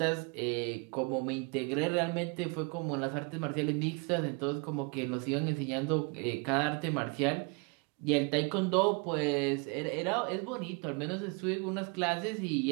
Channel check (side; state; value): left; quieter; 32.5 dB